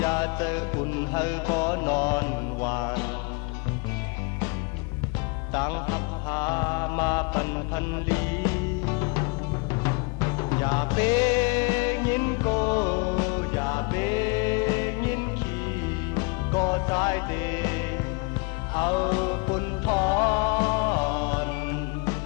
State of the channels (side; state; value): right; quieter; 29.7 dB